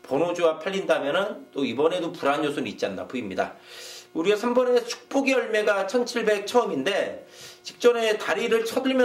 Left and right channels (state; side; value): identical; both; correlation 1.00